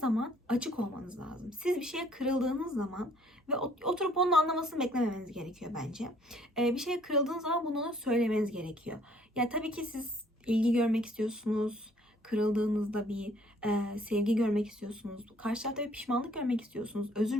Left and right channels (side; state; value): both; normal; correlation 0.60